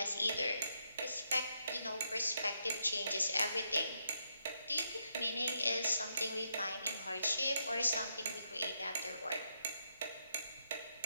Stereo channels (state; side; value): inverted; both; correlation -0.80